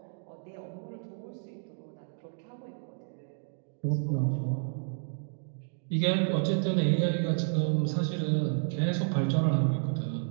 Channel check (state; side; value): silent; left; digital silence